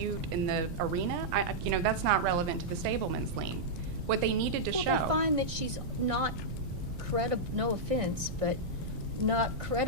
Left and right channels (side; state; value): right; noise; rumble, 8 dB below the sound